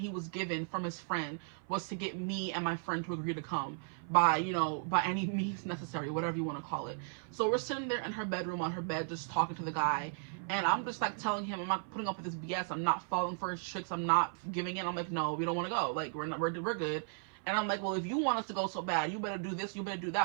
was given from his friend was to get me and my friend to agree to come by, you know, by any means necessary, whatever you want to call it. So we're sitting there in her bedroom on her bed just talking to the guy. And I'm just like telling him, I'm not putting up with this BS. I'm not falling for his tricks. I'm not giving in. I'm like, no, we don't want to go. Like, we're good. And I'm like, well, if you want us to go so bad, you better do this, you better do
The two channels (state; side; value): silent; left; 54 dB below the other